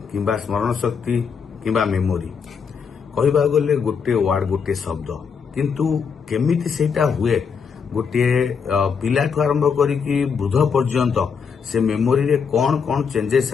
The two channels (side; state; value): right; quieter; 6.2 dB